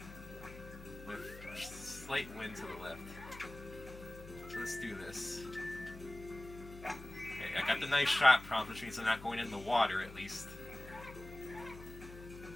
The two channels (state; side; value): noise; left; hum, 14 dB below the sound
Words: With slight wind to the left. So let's do this. Okay, I got the nice shot prompt, which means I'm not going in the water at least.